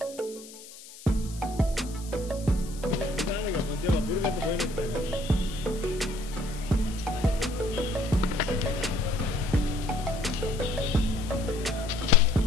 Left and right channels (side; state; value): left; noise; hiss, 17 dB below the sound